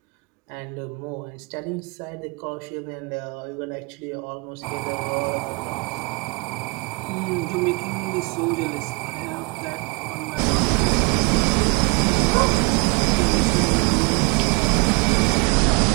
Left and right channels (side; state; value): left; quieter; 28.0 dB